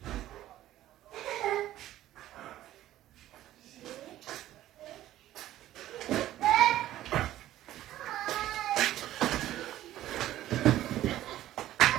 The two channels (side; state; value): left; quieter; 13.8 dB